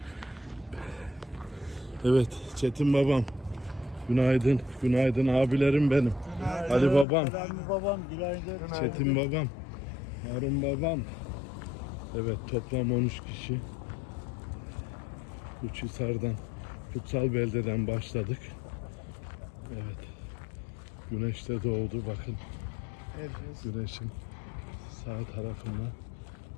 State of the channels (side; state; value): right; drops out; at 7.1 s